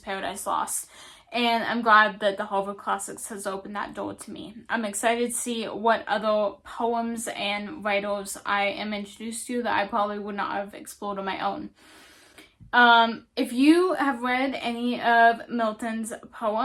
Paradise Lost. And I'm glad that the Harvard Classics has opened that door to me. I'm excited to see what other poems and writers I am introduced to that I probably would not have explored on my own. If you have read any of Milton's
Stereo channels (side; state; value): both; identical; correlation 1.00